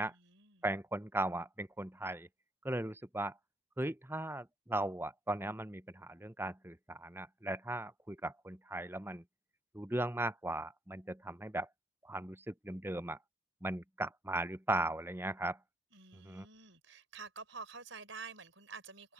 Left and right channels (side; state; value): both; normal; correlation 0.71